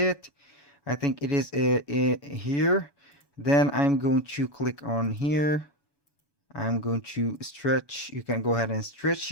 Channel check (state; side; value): late; left; 1.2 ms